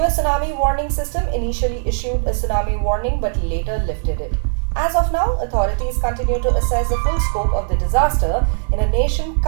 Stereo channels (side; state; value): left; silent; digital silence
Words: tsunami warning system initially issued a tsunami warning but later lifted it. As of now, authorities continue to assess the full scope of the disaster in a nation